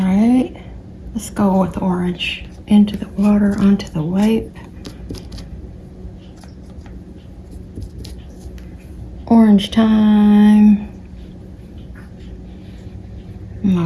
right. Let's go with orange. Into the water, onto the white. Orange time.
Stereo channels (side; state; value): both; identical; correlation 1.00